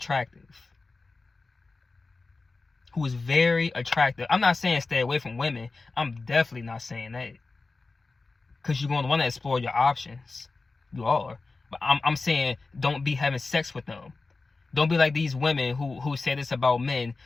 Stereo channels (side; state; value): right; quieter; 3.8 dB